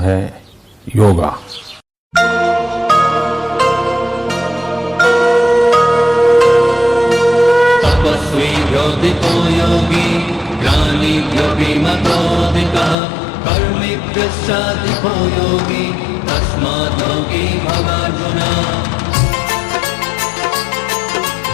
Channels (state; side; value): drops out; right; at 13.0 s